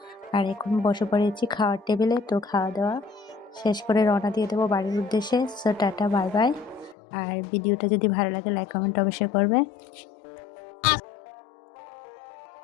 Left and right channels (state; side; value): drops out; right; at 7.0 s